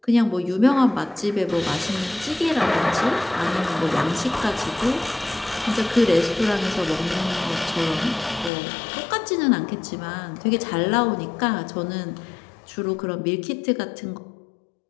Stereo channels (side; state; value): right; drops out; at 8.5 s